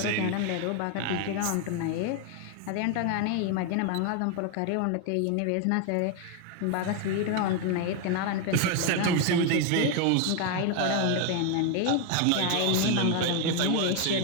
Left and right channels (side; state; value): both; different; correlation 0.01